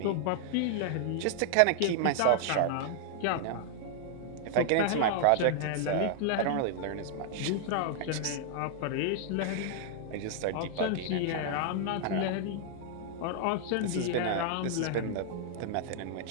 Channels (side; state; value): both; different; correlation 0.00